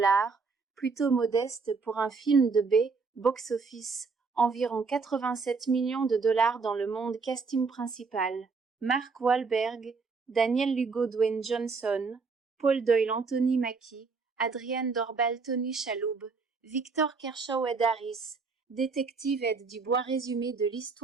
plutôt modeste pour un film de B, box-office, environ 87 millions de dollars dans le monde. Casting principal, Mark Wahlberg, Daniel Lugo, Dwayne Johnson, Paul Doyle, Anthony Mackie, Adrienne Dorbal, Tony Shalhoub, Victor Kershaw, Ed Harris, détective Ed Dubois. Résumé de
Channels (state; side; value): quieter; left; 4.7 dB